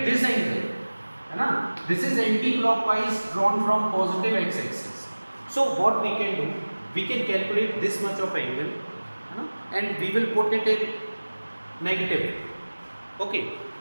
this angle. This is anti-clockwise drawn from positive x-axis. So what we can do? We can calculate this much of angle, and we will put it in negative. Okay.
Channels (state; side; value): inverted; both; correlation -1.00